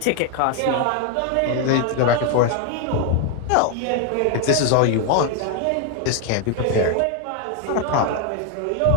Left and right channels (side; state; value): both; different; correlation 0.01